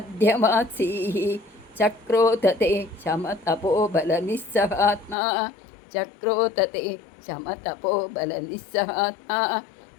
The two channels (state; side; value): drops out; right; at 5.2 s